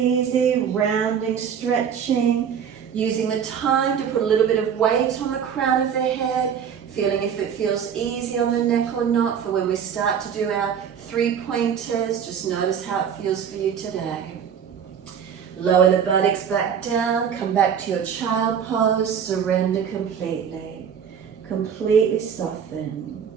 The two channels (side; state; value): left; quieter; 7.8 dB